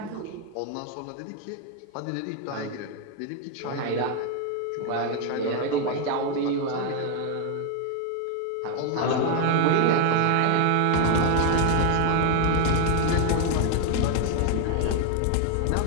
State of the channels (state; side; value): different; both; correlation 0.01